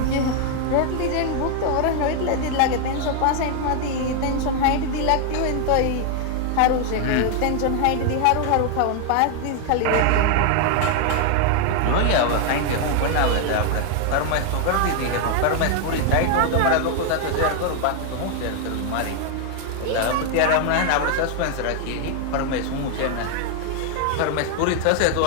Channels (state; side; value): different; both; correlation 0.01